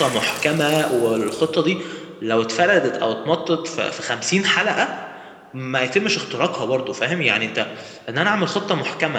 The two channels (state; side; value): identical; both; correlation 1.00